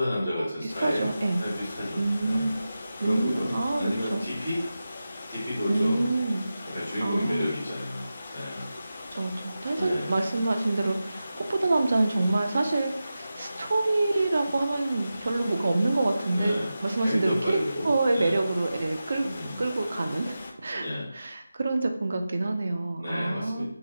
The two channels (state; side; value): inverted; both; correlation -0.93